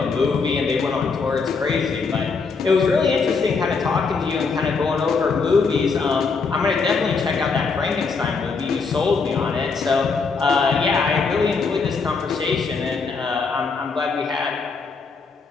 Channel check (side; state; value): right; quieter; 4.8 dB